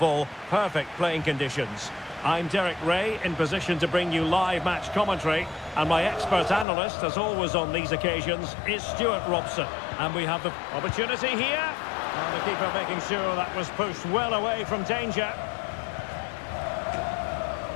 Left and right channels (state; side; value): drops out; right; at 6.7 s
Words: Perfect playing conditions. I'm Derek Ray, in position to bring you live match commentary. And my expert analyst, as always on these occasions, is Stuart Robson. And we have the opportunity here. And the keeper making sure that was pushed well away from danger.